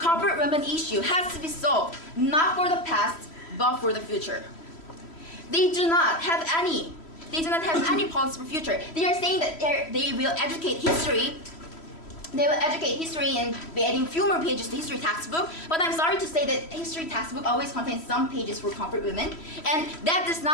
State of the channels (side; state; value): right; late; 3.1 ms